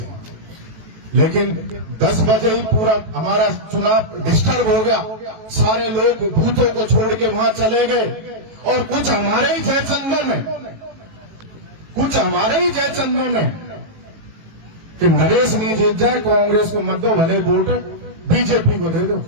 लेकिन 10 बजे ही पूरा हमारा चुनाव डिस्टर्ब हो गया, सारे लोग बूथों को छोड़ के वहां चले गए, और कुछ हमारे ही जयचंदन है, कुछ हमारे ही जयचंदन है कि नरेश नहीं जीत जाए, कांग्रेस को मत दो, भले वोट बीजेपी को दे दो,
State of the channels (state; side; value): late; left; 18 ms